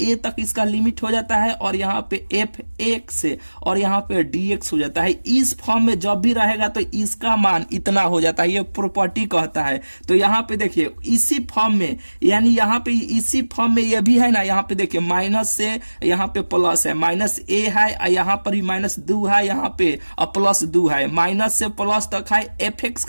ए तक इसका लिमिट हो जाता है, और यहाँ पे एफ एक्स से और यहाँ पे डीएक्स हो जाता है। इस फॉर्म में जब भी रहेगा तो इसका मान इतना हो जाता है, ये प्रॉपर्टी कहता है। तो यहाँ पे देखिए इसी फॉर्म में, यानी यहाँ पे इसी फॉर्म में ये भी है ना। यहाँ पे देखिए माइनस से यहाँ पे प्लस है, माइनस ए है, यहाँ पर भी माइनस 2 है, यहाँ पे प्लस 2 है, माइनस से प्लस तक है, एफ एक्स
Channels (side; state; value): both; inverted; correlation -1.00